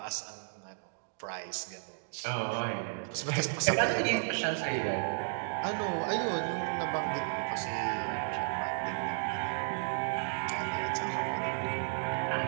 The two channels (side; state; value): left; silent; digital silence